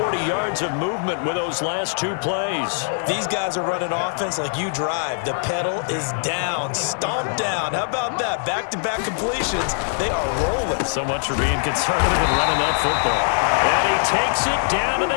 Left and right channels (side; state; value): right; silent; 64 dB below the other